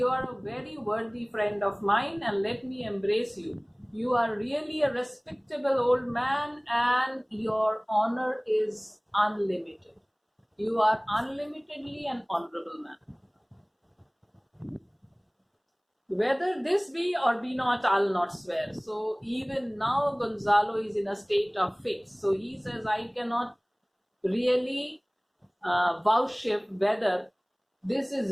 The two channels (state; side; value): identical; both; correlation 1.00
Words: are a very worthy friend of mine and let me embrace you. You are really a respectable old man and your honor is unlimited. You are unlimitedly an honorable man. Whether this be or be not, I'll not swear. So even now Gonzalo is in a state of fix. So he says, I cannot really vouchsafe whether this